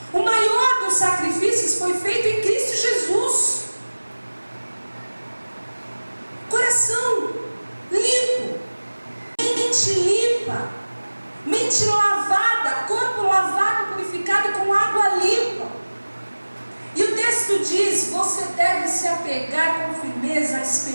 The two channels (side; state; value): both; inverted; correlation -1.00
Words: O maior dos sacrifícios foi feito em Cristo Jesus. Coração limpo, mente limpa, mente lavada, corpo lavado, purificado com água limpa. E o texto diz: você deve se apegar com firmeza à